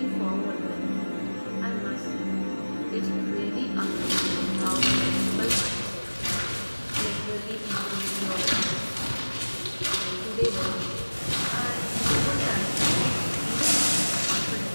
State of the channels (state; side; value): inverted; both; correlation -1.00